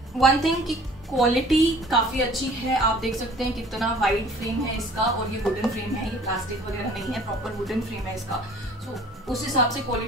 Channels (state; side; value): normal; both; correlation 0.51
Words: वन थिंग की क्वालिटी काफ़ी अच्छी है, आप देख सकते हैं कितना वाइड फ्रेम है इसका और ये वुडन फ्रेम है, ये प्लास्टिक वगैरह नहीं है, प्रॉपर वुडन फ्रेम है इसका। सो उस हिसाब से